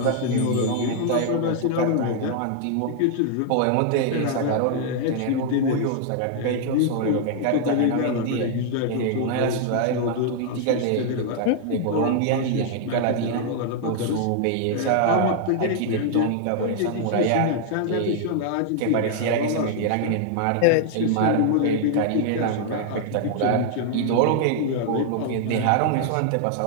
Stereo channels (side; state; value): both; different; correlation 0.00